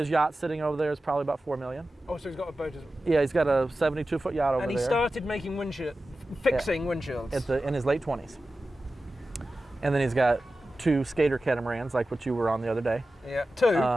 yacht sitting over there is probably about $4 million. Oh, so he's got a boat as well. Yeah, he's got a 72-foot yacht over there. And he started making fixing windshields. In his late 20s. And then he's got 2 skater catamarans, like what you were on the other day. Yeah,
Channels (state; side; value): normal; both; correlation 0.94